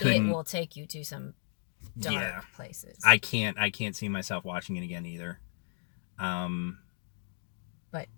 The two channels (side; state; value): right; silent; 56 dB below the other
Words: will take you to some dark places. I can't see myself watching it again either. But